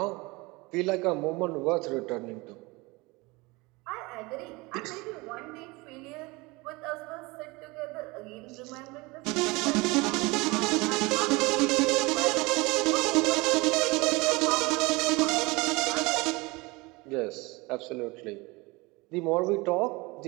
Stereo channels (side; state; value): left; quieter; 24.1 dB